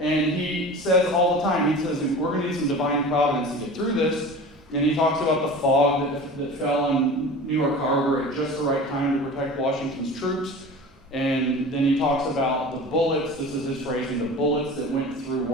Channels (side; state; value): both; normal; correlation 0.36